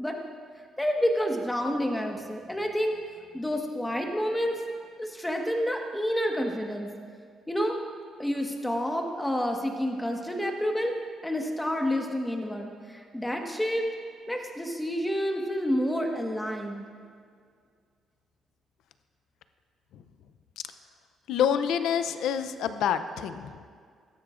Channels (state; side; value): normal; both; correlation 0.84